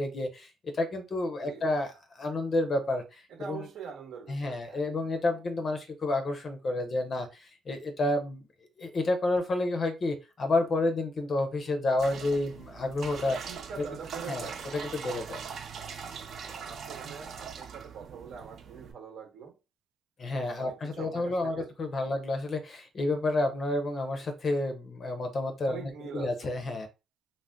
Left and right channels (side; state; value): both; normal; correlation 0.82